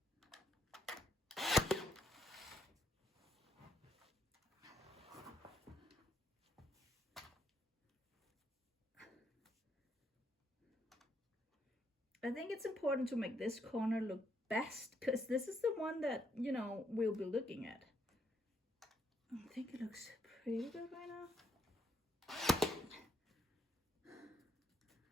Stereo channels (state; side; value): normal; both; correlation 0.74